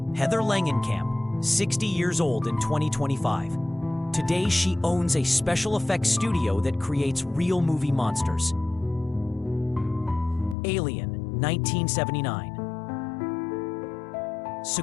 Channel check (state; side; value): drops out; right; at 10.6 s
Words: Heather Langenkamp, 60 years old in 2025. Today she owns a special effects studio that creates real movie monsters. Alien, 1979.